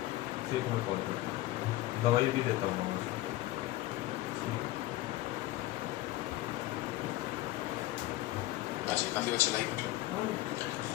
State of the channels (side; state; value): right; quieter; 16.8 dB